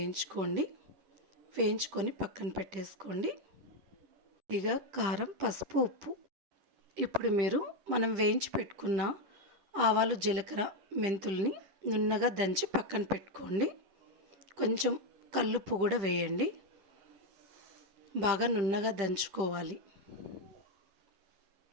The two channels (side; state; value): left; late; 10 ms